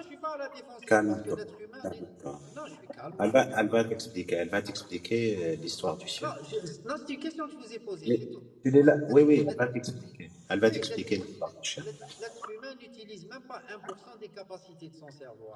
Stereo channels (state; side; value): identical; both; correlation 1.00